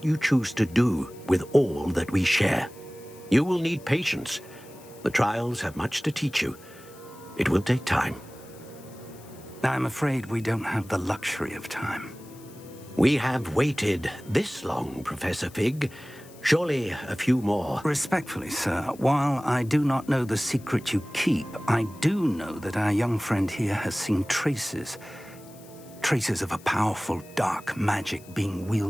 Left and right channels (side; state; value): left; noise; hiss, 23 dB below the sound